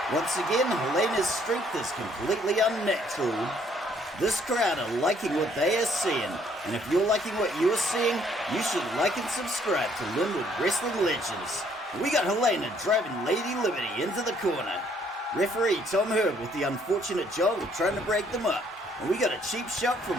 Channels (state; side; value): normal; both; correlation 0.65